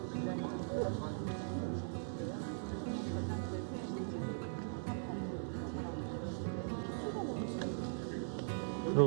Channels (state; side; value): silent; left; digital silence